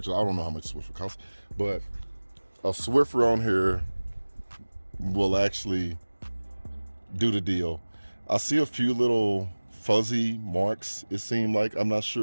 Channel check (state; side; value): inverted; both; correlation -1.00